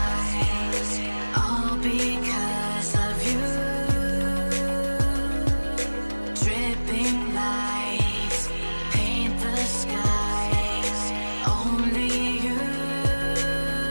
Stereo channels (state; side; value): inverted; both; correlation -1.00